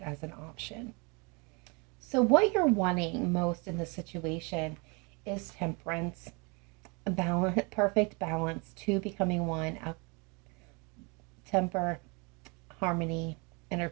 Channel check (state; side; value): quieter; left; 30.9 dB